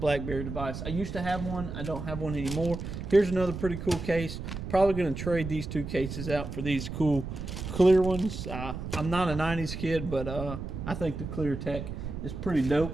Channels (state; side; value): noise; right; rumble, 7 dB below the sound